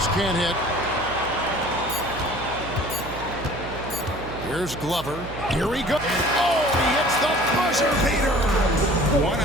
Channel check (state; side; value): noise; right; hum, 12 dB below the sound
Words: can't hit. Here's Glover. Here we go. Oh, he hits the buzzer beater. One